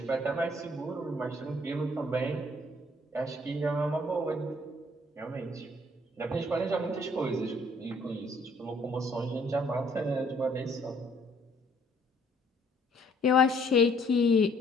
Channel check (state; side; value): normal; both; correlation 0.62